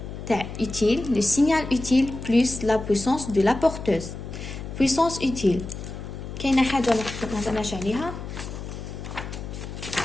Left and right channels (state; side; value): noise; left; hum, 9 dB below the sound